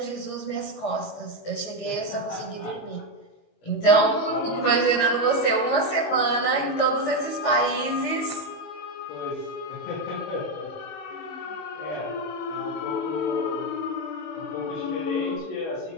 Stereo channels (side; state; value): right; late; 19 ms